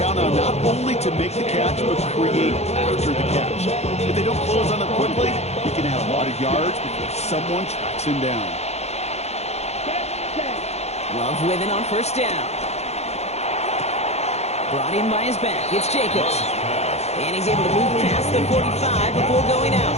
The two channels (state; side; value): late; right; 0.31 ms